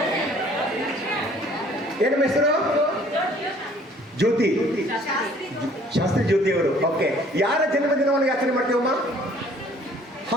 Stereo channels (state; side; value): normal; both; correlation 0.56